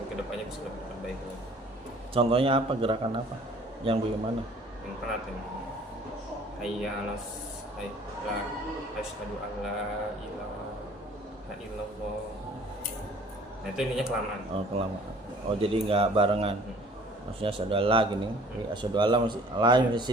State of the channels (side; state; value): both; normal; correlation 0.53